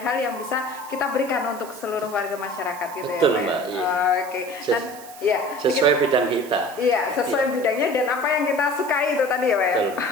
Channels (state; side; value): noise; right; hiss, 18 dB below the sound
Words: hal yang bisa kita berikan untuk seluruh warga masyarakat gitu. Betul, ya Pak Mbak, ya. iya. Oke. Dan ya, Sesuai bidang kita. iya, sesuai bidangnya dan apa yang kita sukai itu tadi ya Pak ya. Betul.